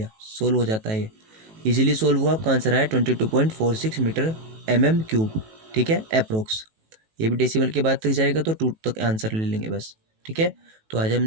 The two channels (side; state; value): left; late; 18 ms